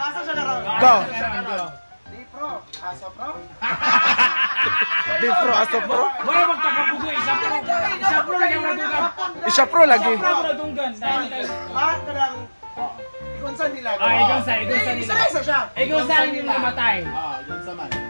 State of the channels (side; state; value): both; inverted; correlation -1.00